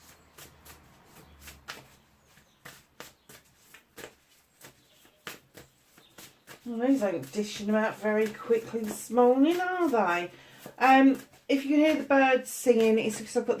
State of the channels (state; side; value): identical; both; correlation 1.00